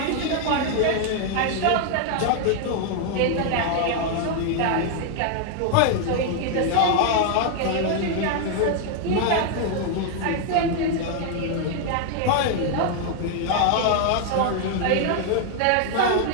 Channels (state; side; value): different; both; correlation 0.00